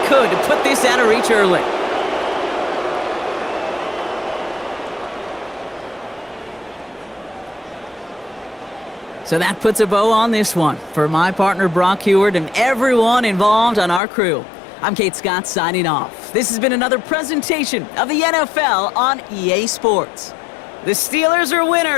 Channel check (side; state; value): right; drops out; at 14.0 s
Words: could to put this out of reach early. So that puts a bow on this one. For my partner, Brock Heward, and everyone involved on our crew, I'm Kate Scott signing off. This has been another presentation of the NFL on EA Sports. The Steelers are